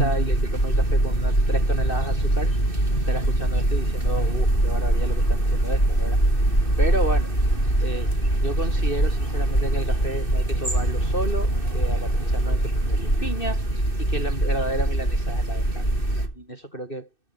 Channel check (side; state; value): right; late; 2.6 ms